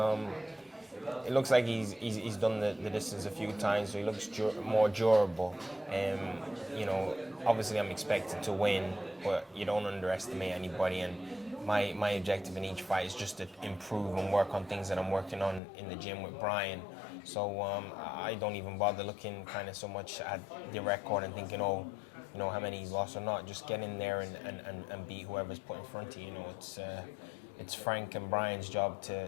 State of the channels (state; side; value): drops out; right; at 15.6 s